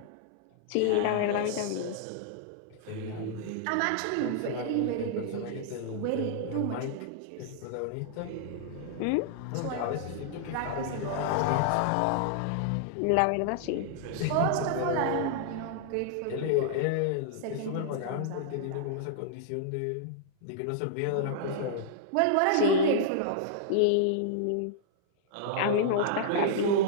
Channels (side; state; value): both; different; correlation -0.01